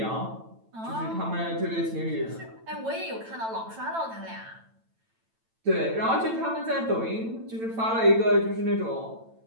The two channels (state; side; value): late; left; 9.0 ms